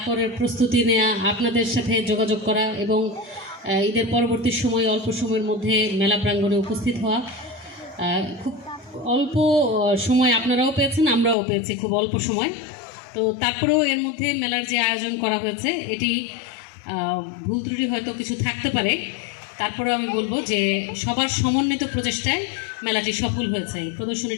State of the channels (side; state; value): right; drops out; at 11.4 s